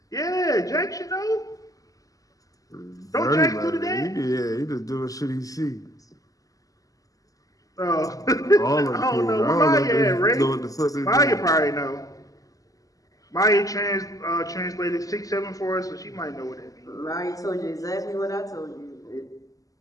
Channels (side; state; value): right; late; 0.17 ms